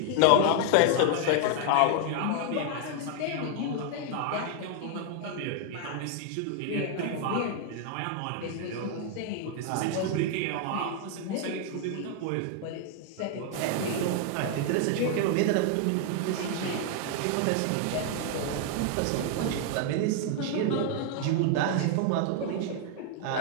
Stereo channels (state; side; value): different; both; correlation 0.00